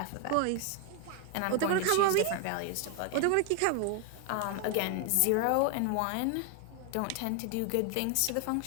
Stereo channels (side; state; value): both; different; correlation 0.01